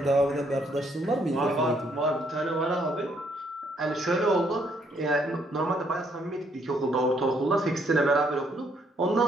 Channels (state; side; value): normal; both; correlation 0.70